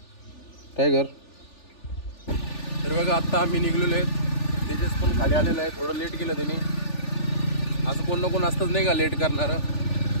तर बघा आत्ता आम्ही निघलेलो आहेत. तेजस पण खाली आलेलं आहे. थोडं लेट केलं त्यांनी. असं कोण ना कोण असतंच नाही का लेट करणारं.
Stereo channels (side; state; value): right; late; 3.4 ms